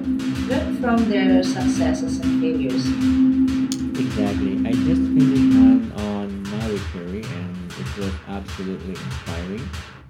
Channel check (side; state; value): both; identical; correlation 1.00